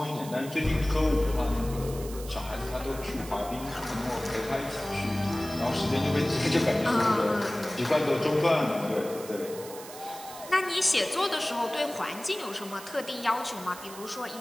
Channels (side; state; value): right; noise; hiss, 15 dB below the sound